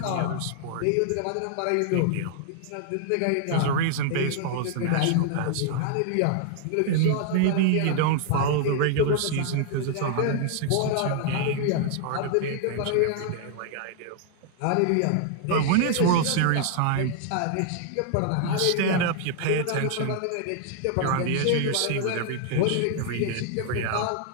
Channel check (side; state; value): both; different; correlation 0.00